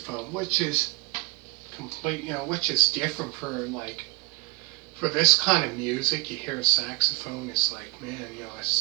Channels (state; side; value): quieter; left; 25.9 dB